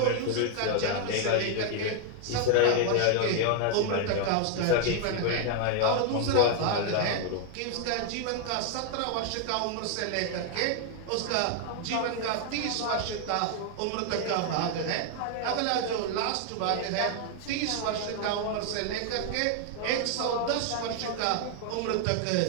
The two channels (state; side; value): different; both; correlation 0.00